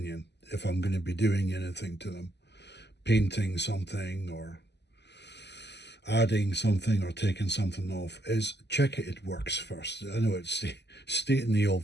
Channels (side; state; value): right; late; 0.50 ms